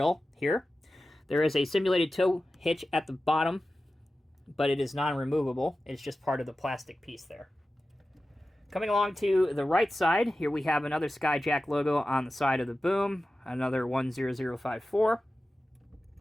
here. There is a simulated tow hitch at the bottom, but it is non-removable. It's just part of the plastic piece there. Coming along to the right side, here we have another SkyTrak logo on the side of the boom, another 10054.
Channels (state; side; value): normal; both; correlation 0.94